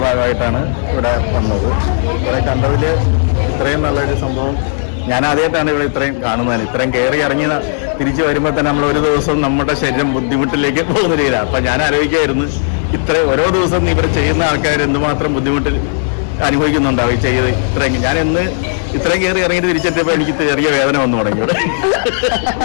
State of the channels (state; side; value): silent; right; digital silence